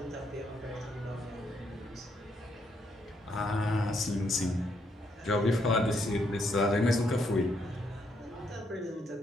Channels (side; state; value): both; normal; correlation 0.75